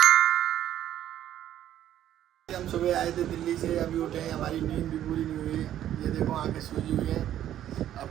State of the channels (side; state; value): left; quieter; 11.6 dB